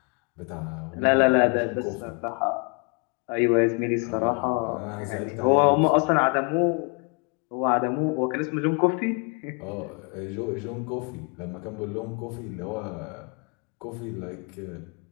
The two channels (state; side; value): quieter; right; 34.2 dB